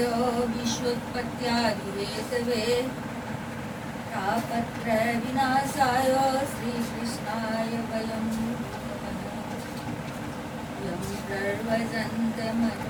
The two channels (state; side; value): identical; both; correlation 1.00